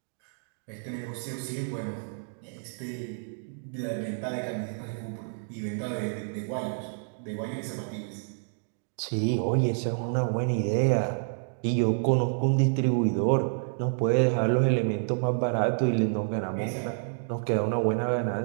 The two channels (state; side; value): silent; left; digital silence